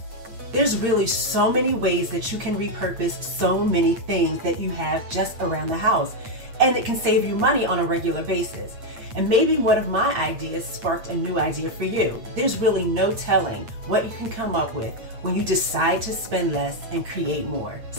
There's really so many ways that you can repurpose so many things that you have just around the house, and it can save you money on a regular basis. And maybe one of my ideas sparked a new idea for you. There's really no telling what you can come up with when you decide to spend less and create more.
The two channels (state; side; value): late; left; 8.8 ms